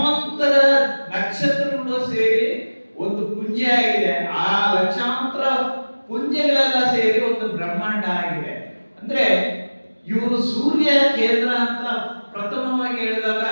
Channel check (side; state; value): both; inverted; correlation -1.00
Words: ನಕ್ಷತ್ರಗಳು ಸೇರಿ ಒಂದು ಪುಂಜ ಆಗಿದೆ. ಆ ಲಕ್ಷಾಂತರ ಪುಂಜಗಳೆಲ್ಲ ಸೇರಿ ಒಂದು ಬ್ರಹ್ಮಾಂಡ ಆಗಿದೆ. ಅಂದ್ರೆ ಇವರು ಸೂರ್ಯ ಕೇಂದ್ರ ಅಂತ ಪ್ರಥಮವಾಗಿ ಹೇಳಿದಾಗ